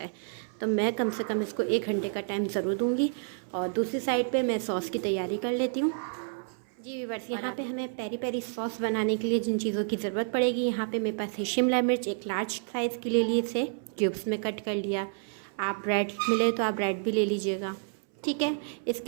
है। तो मैं कम से कम इसको 1 घंटे का टाइम ज़रूर दूंगी। और दूसरी साइड पे मैं सॉस की तैयारी कर लेती हूँ। जी व्यूअर्स, यहाँ पे हमें पेरी पेरी सॉस बनाने के लिए जिन चीज़ों की ज़रूरत पड़ेगी, यहाँ पे मेरे पास है शिमला मिर्च, एक लार्ज साइज़ की ले ली, इसे क्यूब्स में कट कर लिया। आप ब्रेड मिले तो आप ब्रेड भी ले लीजिएगा, ठीक है।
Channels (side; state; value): left; silent; 58 dB below the other